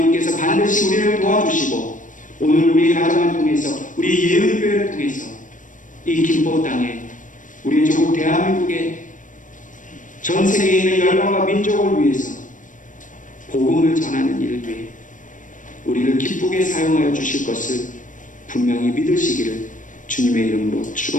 반드시 우리를 도와주시고 오늘 우리 가정을 통해서, 우리 예언교회를 통해서 이 김포 땅에, 우리 조국 대한민국의 전 세계에 있는 열방과 민족을 위해서 복음을 전하는 일을 위해 우리를 기쁘게 사용하여 주실 것을 분명히 믿으시기를 주님의 이름으로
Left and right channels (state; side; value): late; right; 0.37 ms